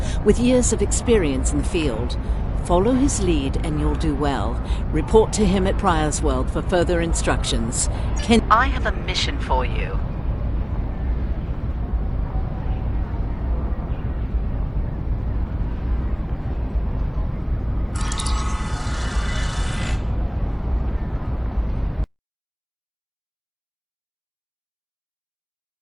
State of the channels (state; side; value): identical; both; correlation 1.00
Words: with years of experience in the field. Follow his lead and you'll do well. Report to him at Pryor's World for further instructions. I have a mission for you.